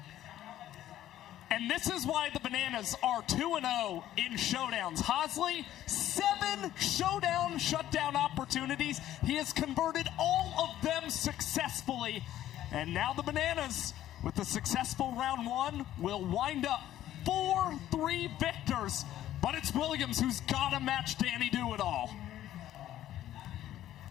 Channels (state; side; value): quieter; right; 12.8 dB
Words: And this is why the Bananas are 2-0 in showdowns. Hosley, 7 showdown shutdown opportunities. He has converted all of them successfully. And now the Bananas, with the successful round 1, will wind up 4-3 victors. But it's Williams who's got to match Danny Do-It-All.